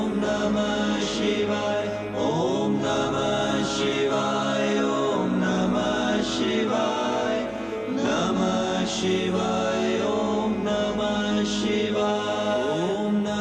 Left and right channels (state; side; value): identical; both; correlation 1.00